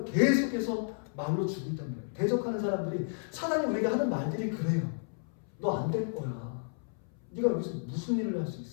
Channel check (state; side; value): silent; right; 56 dB below the other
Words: 계속해서 말로 주고 있단 말이에요. 대적하는 사람들이, 사단이 우리에게 하는 말들이 그래요. 너 안 될 거야. 네가 여기서 무슨 일을 할 수